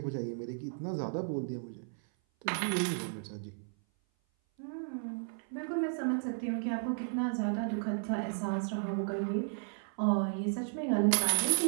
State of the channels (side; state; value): left; silent; 55 dB below the other